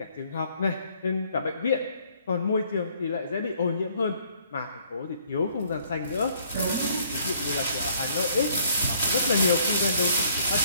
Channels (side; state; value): both; inverted; correlation -0.63